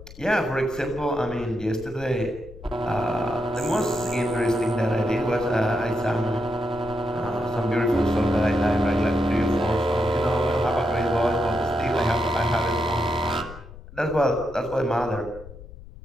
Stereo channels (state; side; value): noise; left; rumble, 16 dB below the sound